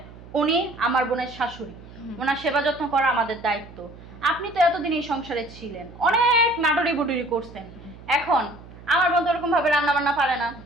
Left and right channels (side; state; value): right; noise; hum, 18 dB below the sound